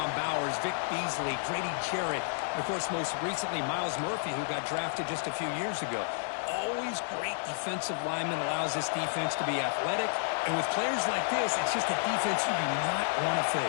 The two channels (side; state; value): right; silent; 57 dB below the other